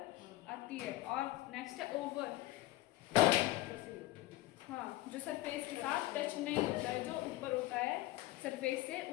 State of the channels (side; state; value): right; quieter; 17.5 dB